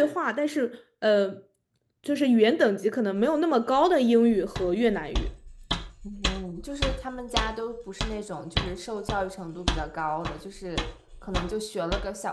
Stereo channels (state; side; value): identical; both; correlation 1.00